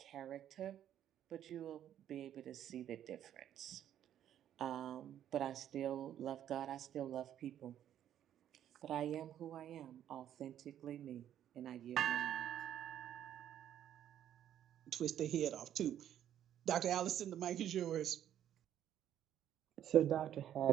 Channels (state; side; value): quieter; left; 10.7 dB